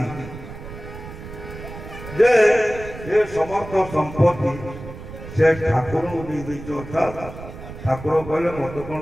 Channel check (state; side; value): noise; right; rumble, 13 dB below the sound